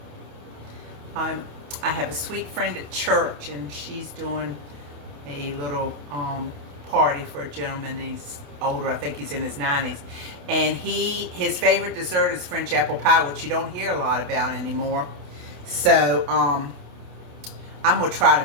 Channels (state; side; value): late; left; 28 ms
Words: I have a sweet friend at church, and she's doing a little party for a gentleman. He's older. I think he's in his 90s, and his favorite dessert is French apple pie, which you don't hear a lot about anymore. So I'm gonna try to